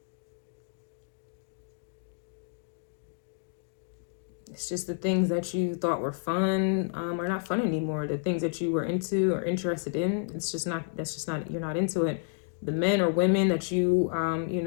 It's just the things that you thought were fun are not fun anymore. The things that you were into or interested in, you're not into it. The men or women that you, you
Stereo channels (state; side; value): silent; right; digital silence